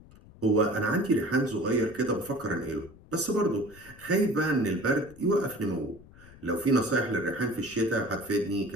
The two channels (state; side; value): noise; left; rumble, 22 dB below the sound